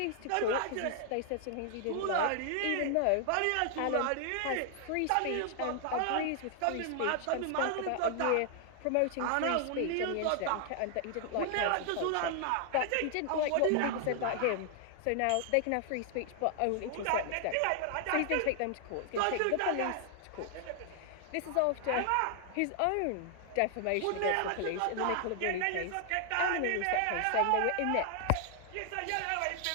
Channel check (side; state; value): both; different; correlation 0.00